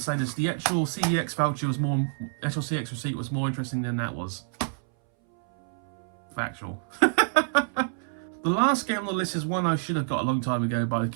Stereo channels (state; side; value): silent; left; 60 dB below the other